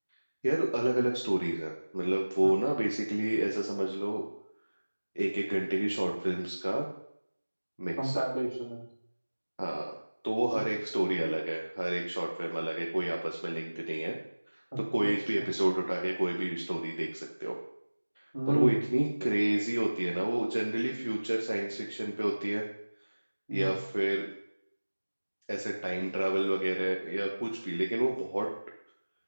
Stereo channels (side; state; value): both; inverted; correlation -1.00